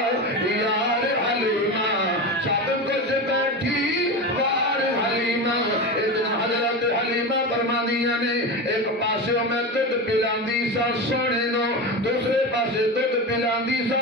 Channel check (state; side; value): normal; both; correlation 0.22